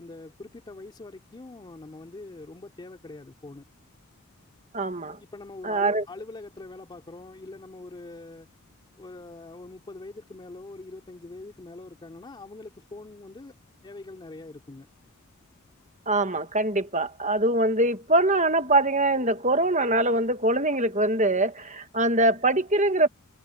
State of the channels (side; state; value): both; normal; correlation 0.02